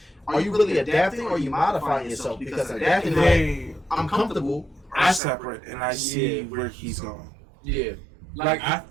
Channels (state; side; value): drops out; left; at 5.2 s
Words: Are you really adapting or are you modifying yourself? Because adapting, like, I'm comfortable. I separate and I see where he's going. Yeah, like